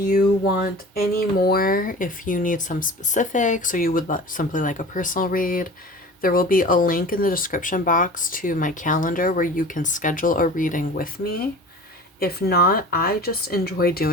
want any more, if you need some specifics, or you would simply like a personal read, there will be a link in the description box to my calendar where you can schedule a reading with me. If not, I just enjoy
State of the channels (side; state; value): both; normal; correlation 0.39